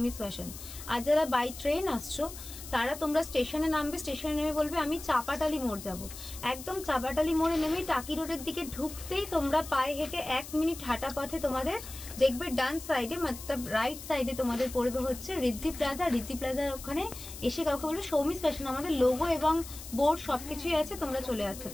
ফ্যাশন। আর যারা বাই ট্রেন আসছো তারা তোমরা স্টেশনে নামবে, স্টেশনে নেমে বলবে আমি চাপাটালি মোড় যাব। একদম চাপাটালি মোড়ে নেমে টাকি রোডের দিকে ঢুকতেই তোমরা পায়ে হেঁটে 1 মিনিট হাঁটা পথে তোমাদের দেখবে ডান সাইডে মতলব রাইট সাইডে তোমাদের পড়বে হচ্ছে রিদ্ধি প্লাজা। রিদ্ধি প্লাজার ওখানে এসে কাউকে বলবে সৌমিস ফ্যাশন, আমাদের লোগো এবং বোর্ড সবকিছুই আছে, তোমরা চলে আসতে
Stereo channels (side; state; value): left; noise; hiss, 13 dB below the sound